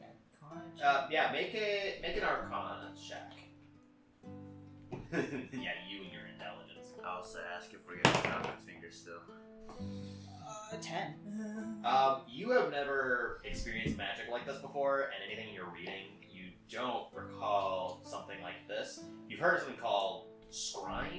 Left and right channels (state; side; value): identical; both; correlation 1.00